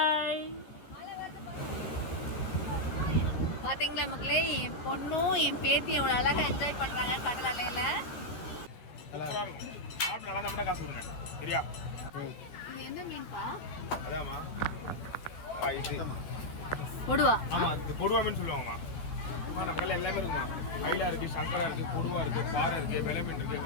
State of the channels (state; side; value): late; right; 13 ms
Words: பார்த்தீங்களா மக்களே, என் பொண்ணும் என் பேத்தி எவ்வளோ அழகாக என்ஜாய் பண்ணுறாங்க கடல் அலையில். இது என்ன மீன்பா? கொடுவா. ஆமாம், இது கொடுவா மீன் சொல்லுவாங்கம்மா. நம்ம கடலில் எல்லாமே இருக்குமா, மயிலா இருக்குது, சங்கரா இருக்குது, கொடுவா இருக்குது, பாறை இருக்குது, வெலை மீன் இருக்குது,